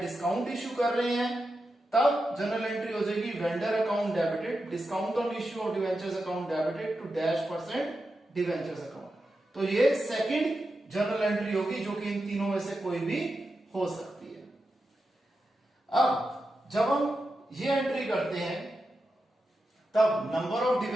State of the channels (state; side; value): normal; both; correlation 0.89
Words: डिस्काउंट इश्यू कर रहे हैं, तब जनरल एंट्री हो जाएगी vendor account debited discount on issue of debentures account debited to -% debentures account. तो ये सेकंड जनरल एंट्री होगी, जो कि इन तीनों में से कोई भी हो सकती है। अब जब हम ये एंट्री करते हैं, तब number of